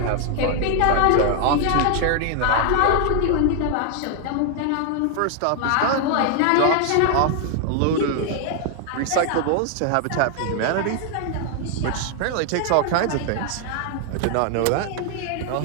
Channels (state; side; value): different; both; correlation 0.00